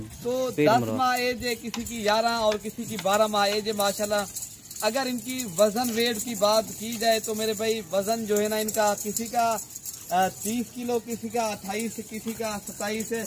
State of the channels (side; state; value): both; identical; correlation 1.00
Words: तो 10 माह एज है, किसी की 11 और किसी की 12 माह एज है माशाल्लाह। अगर इनकी वजन वेट की बात की जाए तो मेरे भाई वजन जो है ना इनका किसी का 30 किलो, किसी का 28, किसी का 27 है।